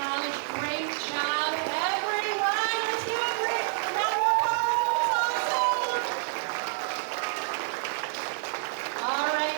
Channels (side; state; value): left; silent; 59 dB below the other